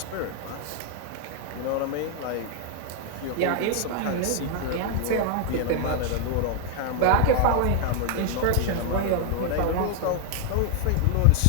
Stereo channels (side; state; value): both; different; correlation 0.00